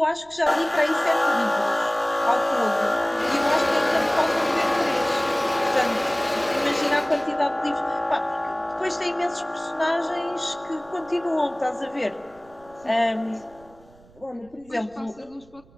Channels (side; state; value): right; noise; rumble, 27 dB below the sound